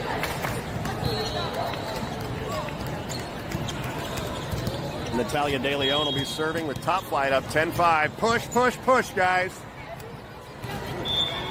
Natalia De Leon will be serving with top flight up 10-5. Push, push, push, guys.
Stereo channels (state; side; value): identical; both; correlation 1.00